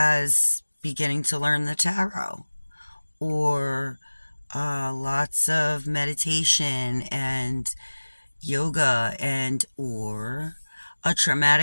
beginning to learn the tarot, or lots of meditation and yoga, or a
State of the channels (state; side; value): inverted; both; correlation -1.00